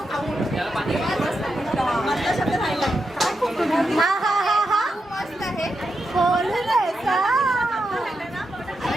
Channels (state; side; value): normal; both; correlation 0.86